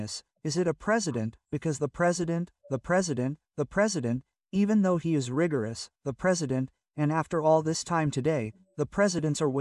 Is it a president, because the president, even though he is rigorous, the president, and after all this time today, the presidents are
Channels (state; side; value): identical; both; correlation 1.00